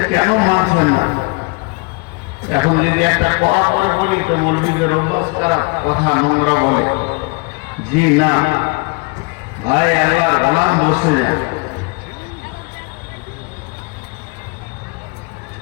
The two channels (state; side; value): quieter; right; 29.9 dB